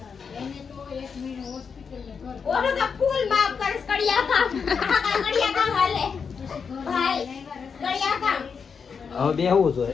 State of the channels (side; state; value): right; quieter; 6.0 dB